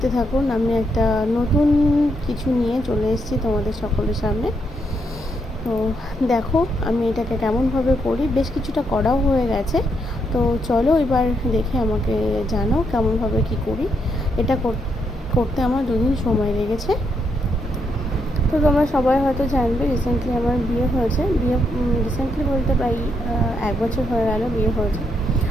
থাকুন, আমি একটা নতুন কিছু নিয়ে চলে এসেছি তোমাদের সকলের সামনে। তো দেখো আমি এটাকে কেমনভাবে করি, বেশ কিছুটা করাও হয়ে গেছে। তো চলো এবার দেখে আমাকে জানাও কেমনভাবে কি করি। এটা করতে আমার 2 দিন সময় লেগেছে। তো তোমরা সবাই হয়তো জানবে, রিসেন্টলি আমার বিয়ে হয়েছে। রিসেন্টলি বলতে প্রায় 1 বছর হয়ে গেল বিয়ে হয়েছে।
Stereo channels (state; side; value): normal; both; correlation 0.78